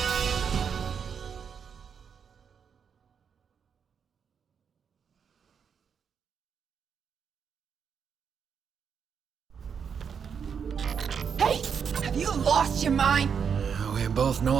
You lost your mind? We both know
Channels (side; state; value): left; quieter; 6.9 dB